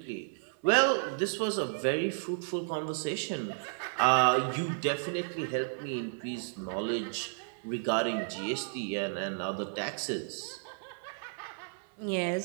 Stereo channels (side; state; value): left; silent; 56 dB below the other